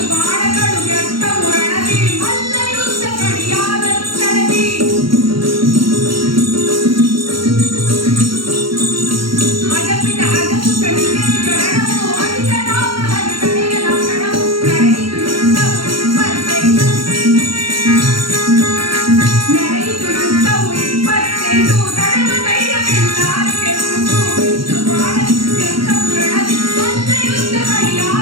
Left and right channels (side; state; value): left; late; 0.74 ms